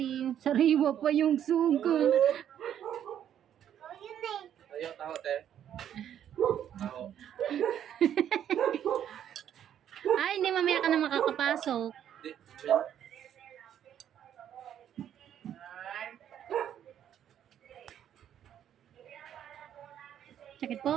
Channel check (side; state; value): left; quieter; 10.0 dB